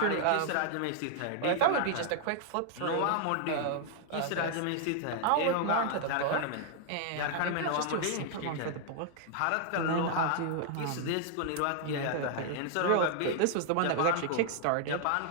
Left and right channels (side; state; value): both; different; correlation 0.00